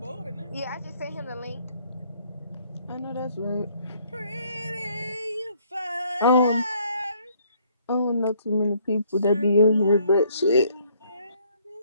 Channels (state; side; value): inverted; both; correlation -0.65